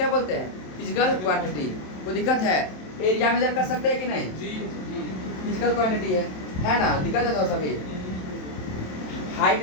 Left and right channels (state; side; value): late; right; 27 ms